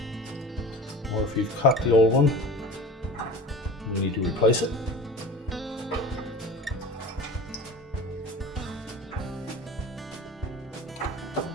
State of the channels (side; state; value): both; normal; correlation 0.37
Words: Or if you've cut the old one, you need to replace it.